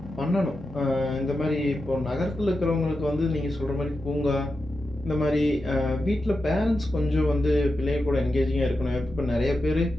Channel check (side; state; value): both; normal; correlation 0.89